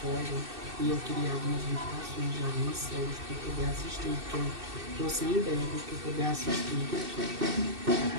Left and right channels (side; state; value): left; late; 2.6 ms